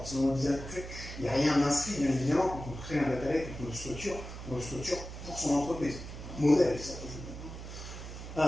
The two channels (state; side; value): noise; right; hum, 10 dB below the sound